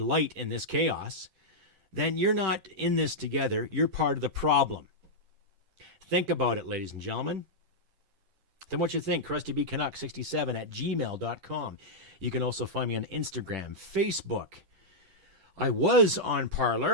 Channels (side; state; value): left; late; 10 ms